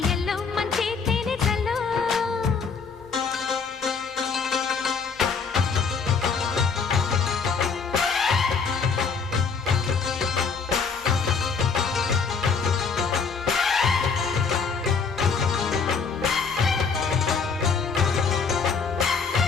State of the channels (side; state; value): right; quieter; 5.4 dB